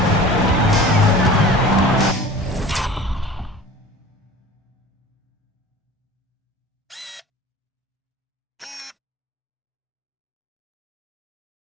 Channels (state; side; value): normal; both; correlation 0.41